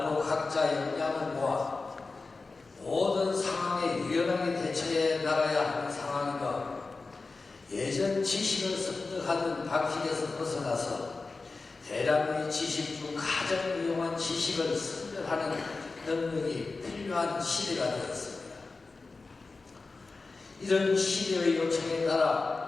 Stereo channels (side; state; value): right; quieter; 3.8 dB